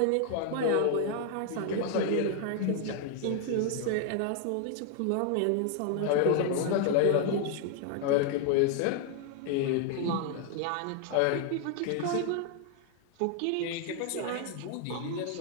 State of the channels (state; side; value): different; both; correlation 0.00